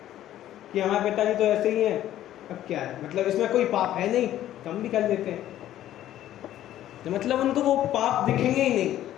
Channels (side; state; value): right; quieter; 12.7 dB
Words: कि हमारे पिताजी तो ऐसे ही हैं, अब क्या है, मतलब इसमें कोई पाप है नहीं तो हम भी कर लेते हैं। तो मतलब उनको वो पाप दिखेंगे ही नहीं,